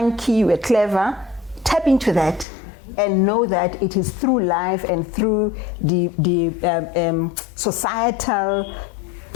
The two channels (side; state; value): right; drops out; at 2.5 s